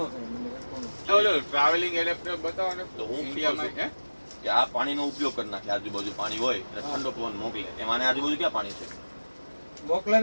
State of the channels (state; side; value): inverted; both; correlation -1.00